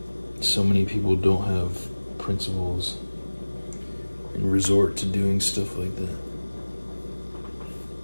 so many people don't have principles and resort to doing stuff like that.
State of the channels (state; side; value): inverted; both; correlation -1.00